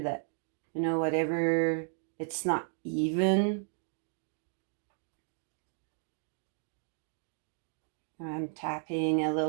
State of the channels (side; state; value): left; silent; digital silence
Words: whatever, it's not even. I'm tapping a